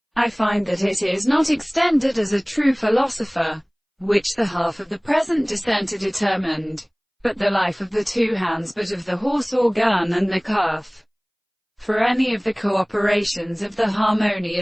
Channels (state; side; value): identical; both; correlation 1.00